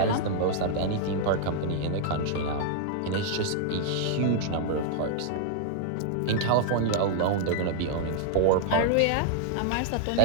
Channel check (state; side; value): different; both; correlation -0.01